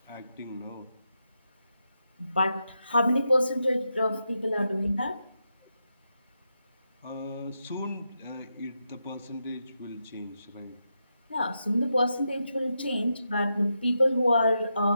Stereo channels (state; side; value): inverted; both; correlation -0.86